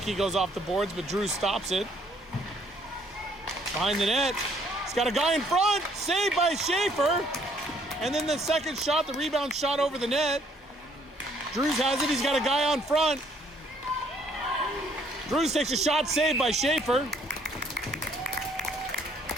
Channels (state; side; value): normal; both; correlation 0.64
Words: goes off the boards, but Drews stops it. Behind the net. He's got a guy in front. Saved by Schaefer. And then the second shot, the rebound shot over the net. Drews has it. He's got a guy on front. Drews takes a shot, saved by Schaefer.